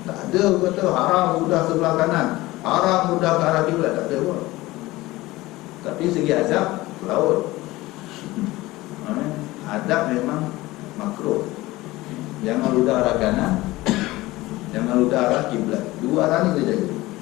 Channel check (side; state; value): right; quieter; 19.0 dB